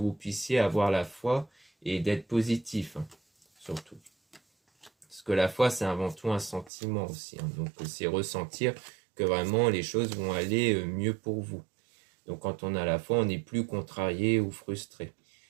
puissiez avoir la foi et d'être positif, hein, surtout. Parce que la foi, c'est avant tout un sentiment aussi, hein, donc c'est ressentir que vraiment les choses vont aller mieux pour vous. Donc quand on a la foi, on n'est plus contrarié ou frustré.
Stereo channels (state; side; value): drops out; left; at 6.7 s